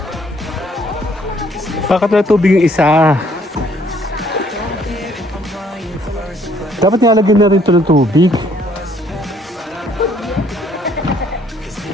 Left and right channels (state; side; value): normal; both; correlation 0.64